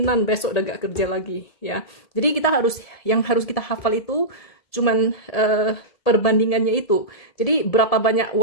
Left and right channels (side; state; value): right; late; 1.7 ms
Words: besok udah gak kerja lagi ya. Jadi yang harus kita hafal itu cuman perbandingannya itu. Jadi berapa banyak